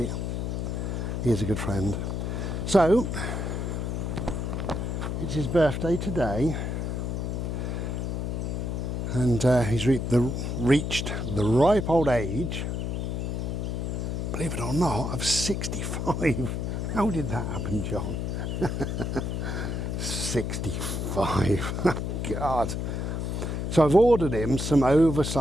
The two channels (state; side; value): noise; left; hum, 2 dB below the sound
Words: He is a good friend. So, it's his birthday today, and he's reached the ripe old age, believe it or not, of 65. How did that happen, John? 65. God. So I've ordered him some